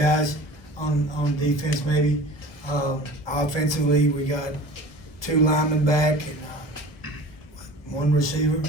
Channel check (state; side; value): late; right; 1.0 ms